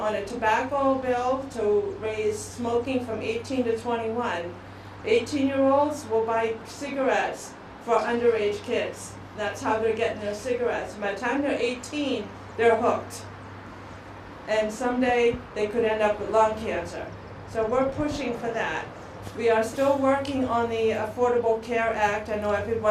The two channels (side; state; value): both; identical; correlation 1.00